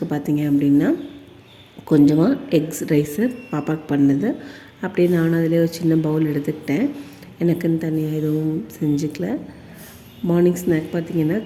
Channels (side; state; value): both; identical; correlation 1.00